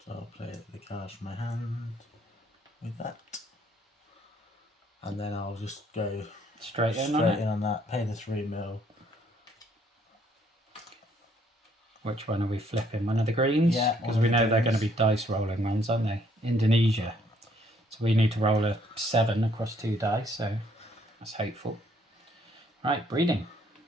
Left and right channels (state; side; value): normal; both; correlation 0.66